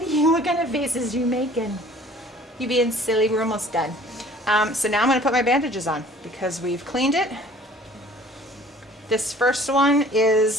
kind of faces you making? You being silly, we're almost done. So now I'm gonna put my bandages on because we've cleaned it. This first one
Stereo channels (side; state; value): both; normal; correlation 0.51